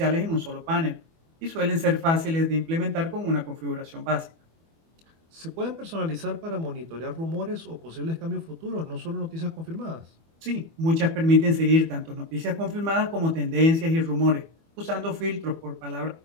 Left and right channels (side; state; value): left; late; 24 ms